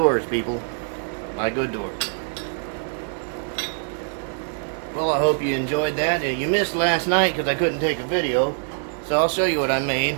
people. Buy good doors. Well, I hope you enjoyed that. You missed last night because I couldn't take a video. So I'll show you what I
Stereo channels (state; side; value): silent; left; digital silence